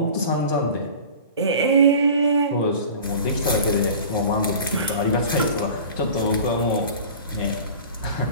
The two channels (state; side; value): inverted; both; correlation -0.39